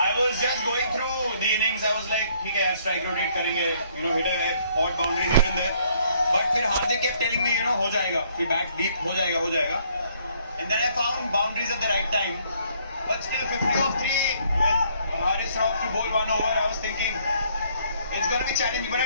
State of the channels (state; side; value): inverted; both; correlation -0.65